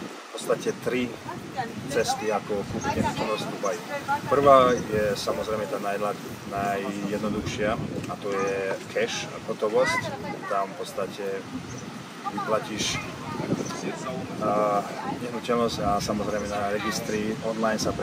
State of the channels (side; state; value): both; identical; correlation 1.00